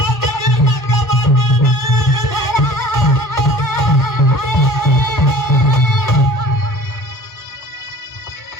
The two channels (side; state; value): right; late; 1.5 ms